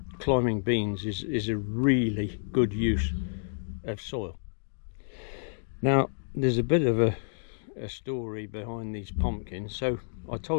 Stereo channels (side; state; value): right; silent; digital silence